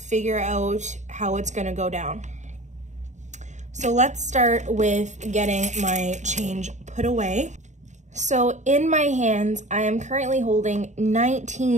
out how it's gonna go down. So let's start with getting my change put away. So in my hands, I am currently holding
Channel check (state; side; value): late; left; 0.34 ms